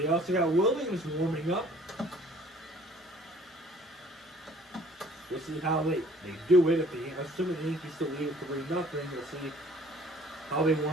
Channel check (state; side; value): normal; both; correlation 0.54